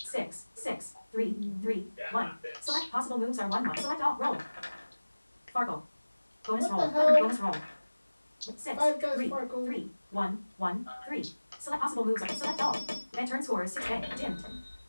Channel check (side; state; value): both; inverted; correlation -1.00